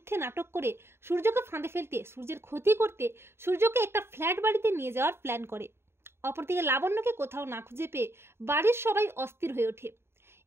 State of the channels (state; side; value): late; left; 0.12 ms